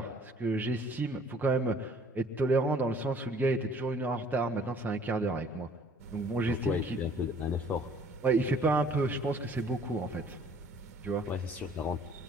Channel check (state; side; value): normal; both; correlation 0.56